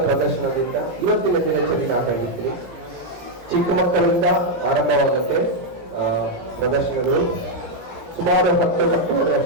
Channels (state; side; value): late; left; 17 ms